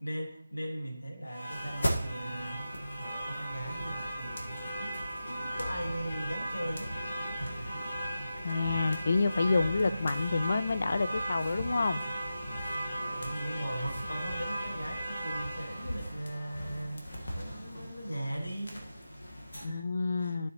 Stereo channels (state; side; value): inverted; both; correlation -0.92